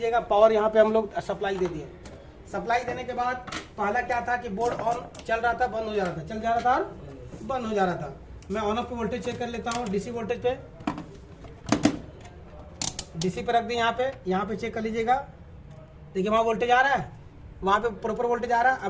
पावर यहाँ पे हम लोग सप्लाई दे दिए। सप्लाई देने के बाद पहला क्या था कि बोर्ड ऑन चल रहा था, बंद हो जा रहा था, चल जा रहा था और बंद हो जा रहा था। मैं ऑन ऑफ पे वोल्टेज चेक कर लेता हूँ। डीसी वोल्टेज पे, डीसी पे रख दी। यहाँ पे चेक कर लीजिएगा, देखिए वहाँ वोल्टेज आ रहा है, वहाँ पे प्रॉपर वोल्टेज आ रहा है।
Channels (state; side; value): identical; both; correlation 1.00